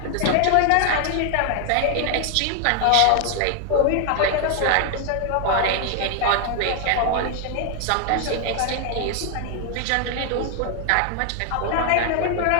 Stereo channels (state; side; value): different; both; correlation 0.00